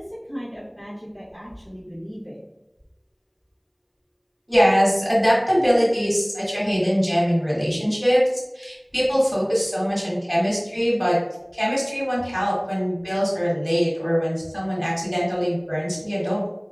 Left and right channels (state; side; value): identical; both; correlation 1.00